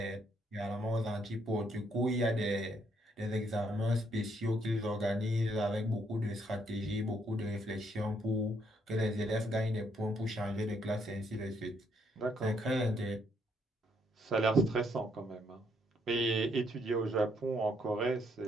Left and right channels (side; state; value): both; normal; correlation 0.72